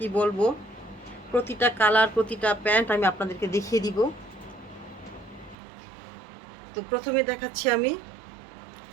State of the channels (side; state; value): left; drops out; at 5.6 s